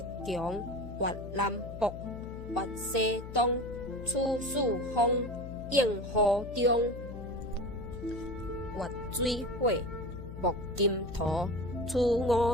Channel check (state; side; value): noise; left; hum, 10 dB below the sound